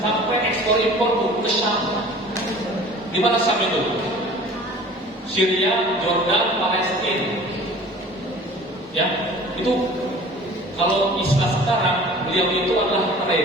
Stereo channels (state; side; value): normal; both; correlation 0.45